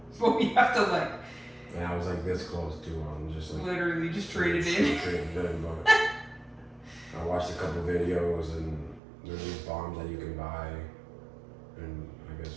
But we have to like... And I was like this close too. I'm just like... Literally, just trade it in. Trade it in, but... I watched a couple videos and there's these bombs that you can buy and I guess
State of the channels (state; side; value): drops out; left; at 9.0 s